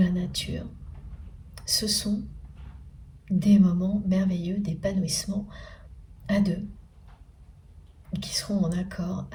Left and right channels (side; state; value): both; identical; correlation 1.00